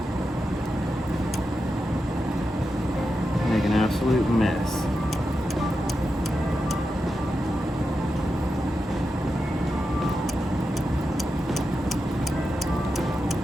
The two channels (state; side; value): normal; both; correlation 0.89